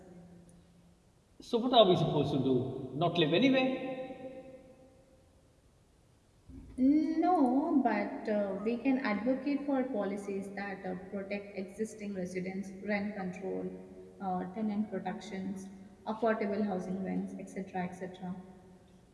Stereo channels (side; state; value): both; identical; correlation 1.00